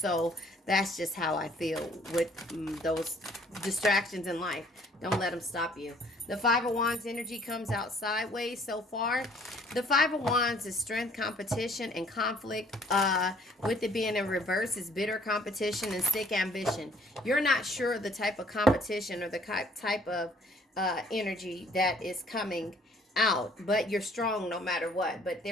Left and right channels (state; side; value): normal; both; correlation 0.60